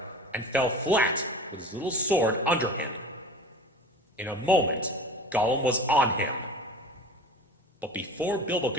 and fell flat with his little sword under him. In a moment, Gollum was on him. But before Bilbo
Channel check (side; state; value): both; normal; correlation 0.37